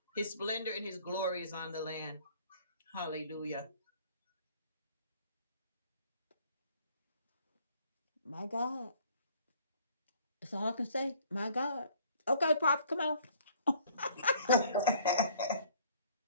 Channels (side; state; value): both; inverted; correlation -0.57